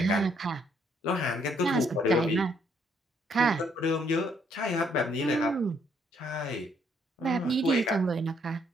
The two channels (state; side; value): normal; both; correlation 0.69